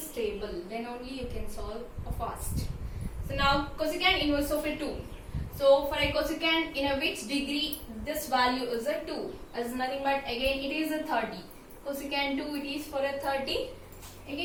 table, then only you can solve fast. So now cosecant inverse of a 2. So for a cosecant in a which degree this value is a 2, as nothing but again it is a 30. Cosecant 2, it is for a 30.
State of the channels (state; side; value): identical; both; correlation 1.00